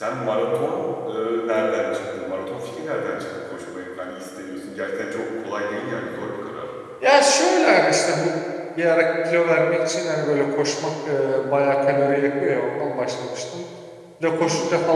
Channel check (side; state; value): both; identical; correlation 1.00